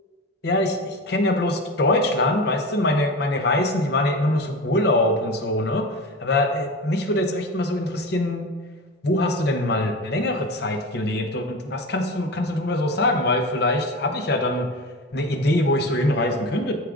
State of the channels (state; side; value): normal; both; correlation 0.28